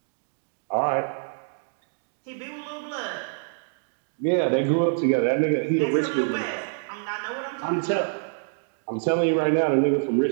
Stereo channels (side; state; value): left; silent; 61 dB below the other